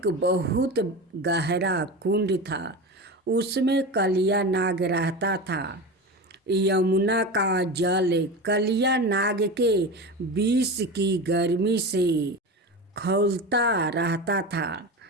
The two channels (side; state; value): both; normal; correlation 0.26